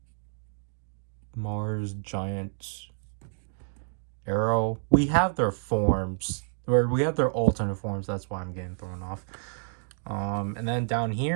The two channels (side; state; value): left; silent; digital silence